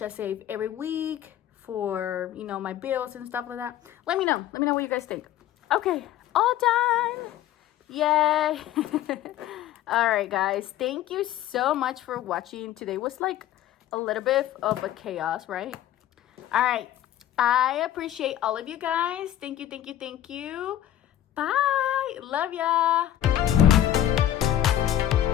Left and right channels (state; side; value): quieter; right; 12.2 dB